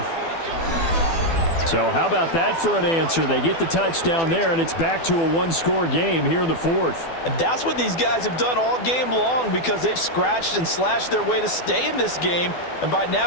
So how about that for an answer? They get the touchdown there, and it's back to a one-score game here in the 4th. And that's what these guys have done all game long because they've scratched and slashed their way to stay in this game. And by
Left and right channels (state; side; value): late; right; 12 ms